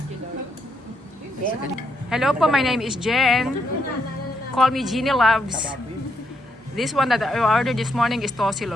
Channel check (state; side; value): normal; both; correlation 0.78